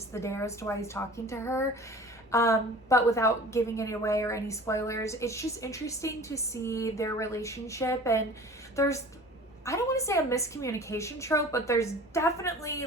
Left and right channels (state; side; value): normal; both; correlation 0.42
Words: the dare as to why he's talking to her. But without giving any away or any spoilers, it's just interesting to see their relationship. And there's, I don't want to say a miscommunication trope, but there's definitely